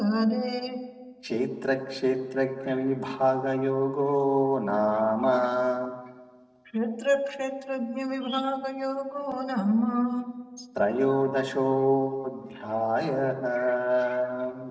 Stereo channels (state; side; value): identical; both; correlation 1.00